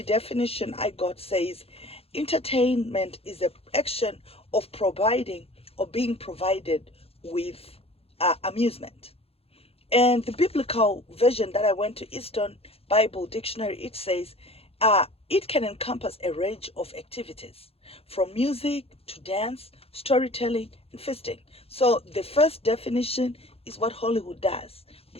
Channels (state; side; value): late; right; 0.28 ms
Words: definition I got says entertainment is an action of providing or being provided with amusement. And the biblical version that I went to, Eastern Bible Dictionary, it says it can encompass a range of activities from music to dance, storytelling, and feasting. So the first definition is what Hollywood does. You